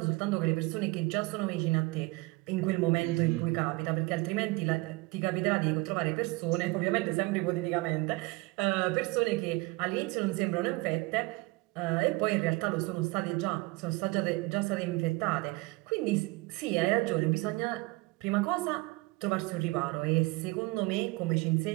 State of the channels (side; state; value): left; quieter; 23.5 dB